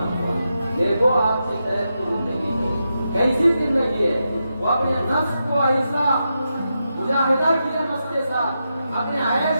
ہوا۔ دیکھو آپ کی صحت کی زندگی کو کیسی زندگی ہے، وہ اپنے نفس کو ایسا مجاہدہ کیا نفس کے ساتھ، اپنے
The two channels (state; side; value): inverted; both; correlation -0.87